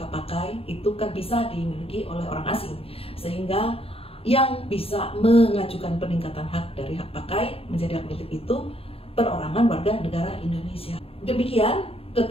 hak pakai itu kan bisa dimiliki oleh orang asing, sehingga yang bisa mengajukan peningkatan hak dari hak pakai menjadi hak milik itu perorangan warga negara Indonesia. Demikian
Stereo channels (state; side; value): late; right; 0.28 ms